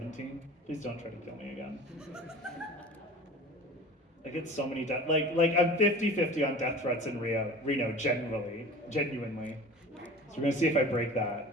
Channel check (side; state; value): both; normal; correlation 0.39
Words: Please don't try to kill me again. I get so many death, like I'm 50-50 on death threats in Reno, genuinely. So we're gonna see if I break